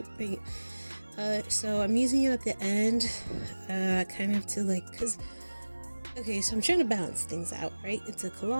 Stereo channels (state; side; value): inverted; both; correlation -1.00